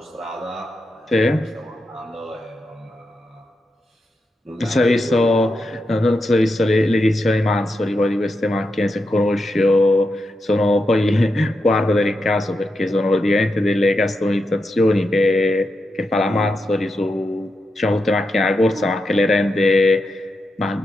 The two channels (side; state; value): both; normal; correlation 0.87